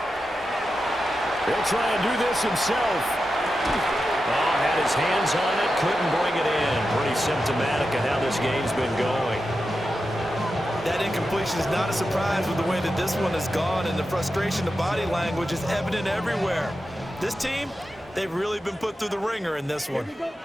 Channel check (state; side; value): normal; both; correlation 0.90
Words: He'll try and do this himself. Oh, had his hands on it, couldn't bring it in. Pretty symptomatic of how this game's been going. That incompletion is not a surprise with the way that this one has gone, and the frustration of body language is evident everywhere. This team, they've really been put through the ringer in this one.